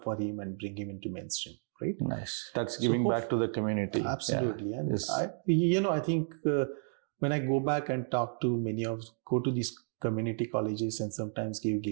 for him, and bring him into mainstream. Right? Nice. That's giving back to the community. Absolutely. Yeah. And I think when I go back and go to these community colleges and sometimes give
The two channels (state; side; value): silent; left; 56 dB below the other